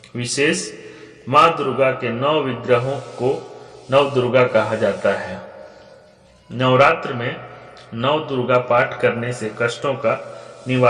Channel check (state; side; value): identical; both; correlation 1.00